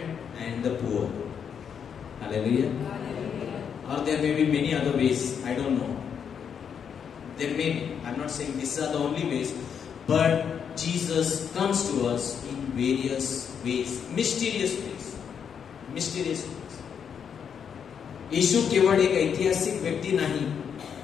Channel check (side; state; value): right; quieter; 7.4 dB